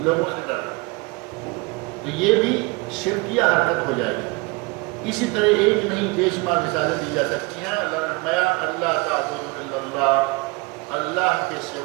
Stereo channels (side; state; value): left; quieter; 26.7 dB